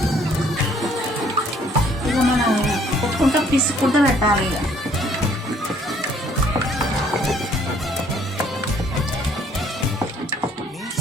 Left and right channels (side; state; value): both; normal; correlation 0.62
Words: ఇక మనం కొట్టుకుంటూ పిసుకుంటూ పెట్టాలి.